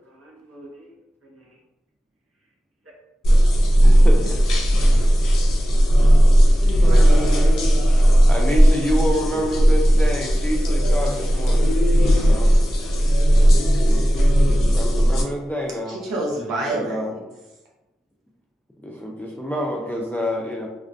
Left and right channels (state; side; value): normal; both; correlation 0.96